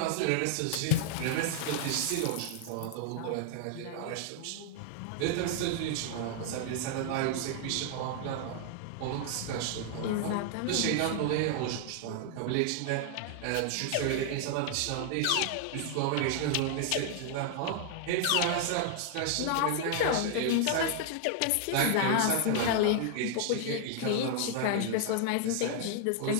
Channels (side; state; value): both; different; correlation 0.00